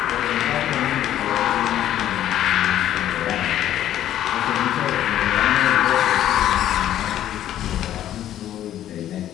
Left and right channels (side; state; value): right; quieter; 11.9 dB